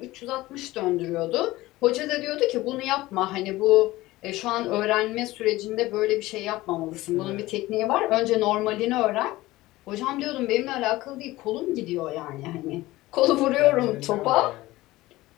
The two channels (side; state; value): right; quieter; 18.2 dB